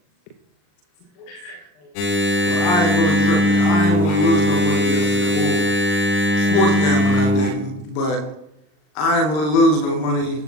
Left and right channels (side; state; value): right; late; 39 ms